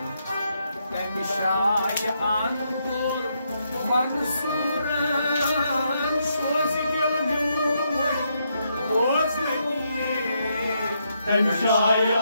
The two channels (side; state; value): both; inverted; correlation -0.78